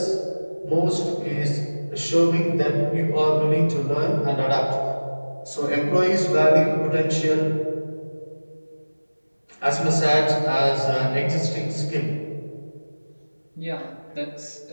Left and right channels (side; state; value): both; inverted; correlation -1.00